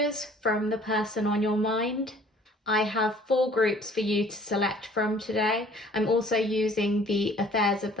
from the person on your mind. I have 4 groups for you to select from today. I'm also using the Affairs of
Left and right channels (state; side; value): normal; both; correlation 0.54